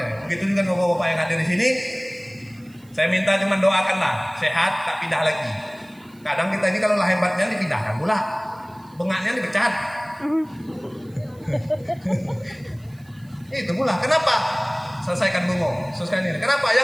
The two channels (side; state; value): right; noise; hiss, 30 dB below the sound